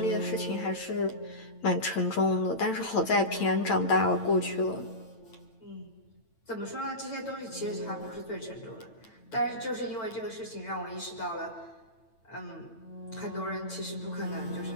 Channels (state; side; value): late; right; 8.9 ms